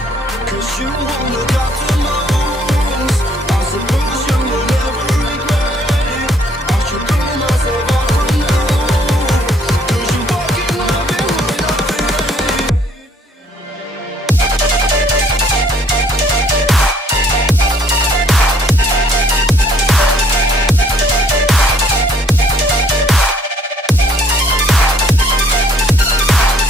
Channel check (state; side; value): normal; both; correlation 0.63